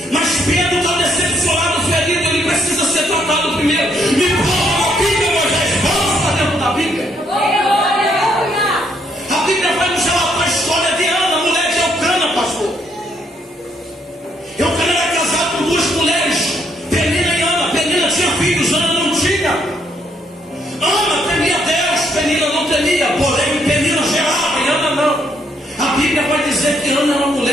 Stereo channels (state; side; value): normal; both; correlation 0.72